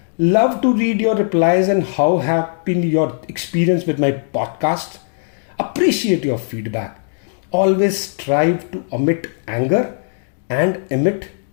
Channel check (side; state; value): right; silent; digital silence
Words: Love to read your replies and how have been your experience with my podcast. Appreciate your feedback. Always strive to omit anger and emit